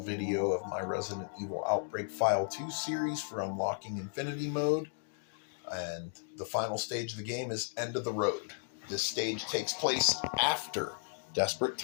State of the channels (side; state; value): right; silent; digital silence